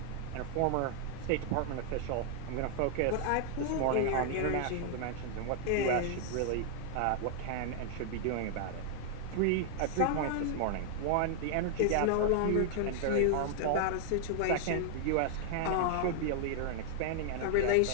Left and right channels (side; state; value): both; different; correlation -0.01